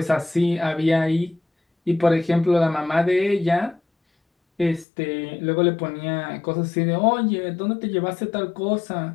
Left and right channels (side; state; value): right; drops out; at 4.9 s